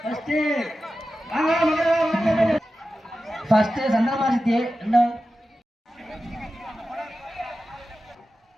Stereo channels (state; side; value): normal; both; correlation 0.93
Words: ஃபர்ஸ்ட் சந்திரமாசித்தி. ரெண்டாவது